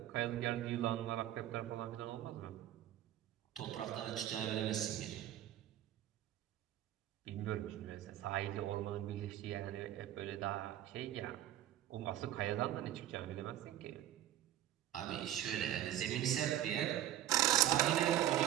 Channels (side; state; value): left; quieter; 12.4 dB